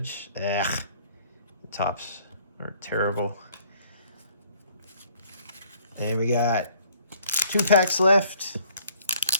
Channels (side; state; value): both; inverted; correlation -0.59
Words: Ugh. The tops are terrible. And we got 2 packs left.